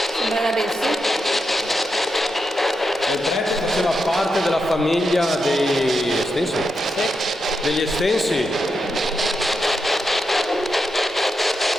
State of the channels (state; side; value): normal; both; correlation 0.86